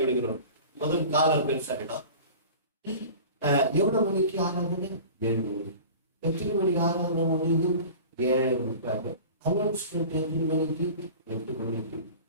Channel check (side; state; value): both; inverted; correlation -0.39